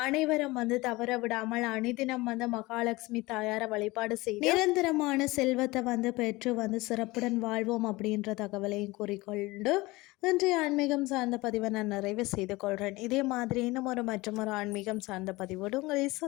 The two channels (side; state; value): right; quieter; 21.4 dB